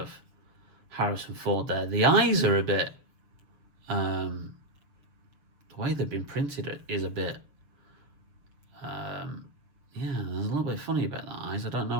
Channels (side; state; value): left; late; 6.8 ms